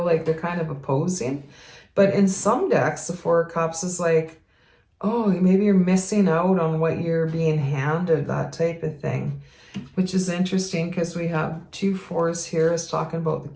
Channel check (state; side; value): identical; both; correlation 1.00